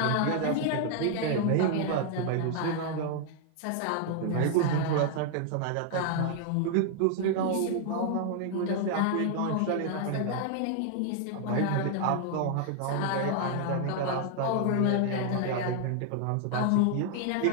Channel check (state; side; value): different; both; correlation 0.00